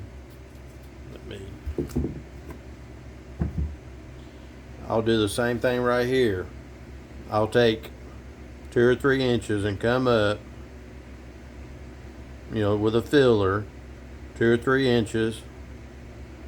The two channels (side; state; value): both; identical; correlation 1.00